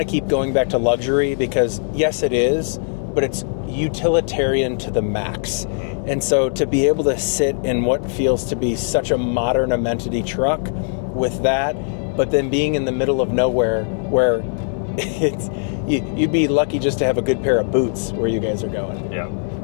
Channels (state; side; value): silent; right; 65 dB below the other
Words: keep going back to luxury because yes it is, but it's utilitarian to the max. Mm-hmm. And so to be able to sit in what feels to be such a modern amenity truck with that, but then being in the middle of nowhere where you'd be lucky just to have a good pair of boots where you guys are going. Yeah,